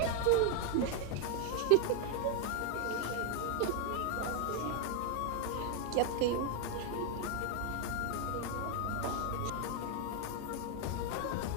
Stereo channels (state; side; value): different; both; correlation 0.00